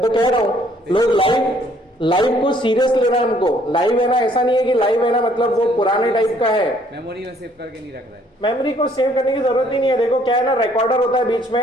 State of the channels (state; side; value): normal; both; correlation 0.63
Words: तो कह रहा हूँ लोग लाइव को सीरियस ले रहे हैं। हमको लाइव है ना, ऐसा नहीं है कि लाइव है ना मतलब वो पुराने टाइप का है, मेमोरी में सेव करके नहीं रख रहा है। मेमोरी को सेव करने की जरूरत ही नहीं है। देखो क्या है ना, रिकॉर्डर होता है बीच